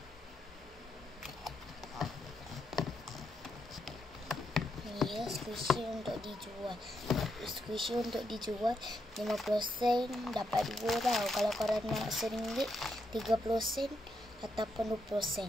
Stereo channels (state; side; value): normal; both; correlation 0.81